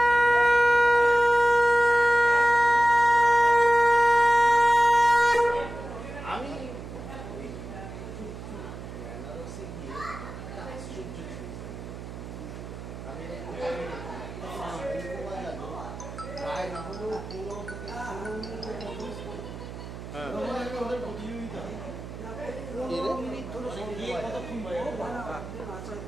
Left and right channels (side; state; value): right; noise; hum, 11 dB below the sound